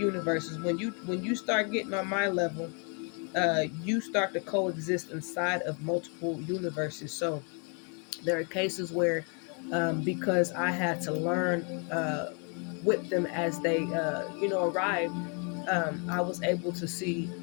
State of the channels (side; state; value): right; quieter; 36.5 dB